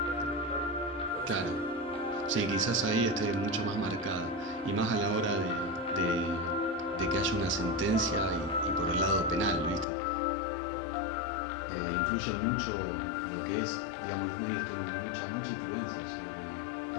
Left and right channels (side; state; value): right; drops out; at 9.9 s